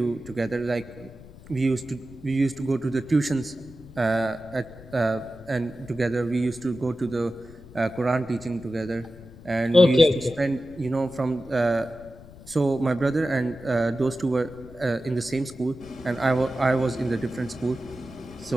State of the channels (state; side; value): noise; left; rumble, 19 dB below the sound